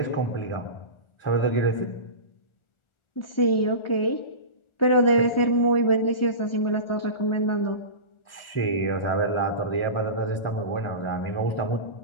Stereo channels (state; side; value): late; right; 1.4 ms